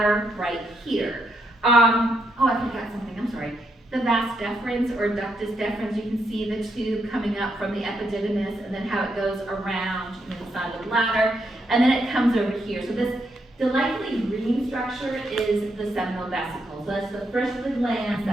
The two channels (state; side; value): normal; both; correlation 0.79